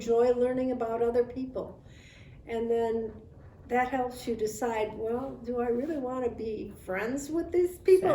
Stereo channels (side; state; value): both; identical; correlation 1.00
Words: learning about other people. And then that helps you decide, well, do I really want to be friends with these people?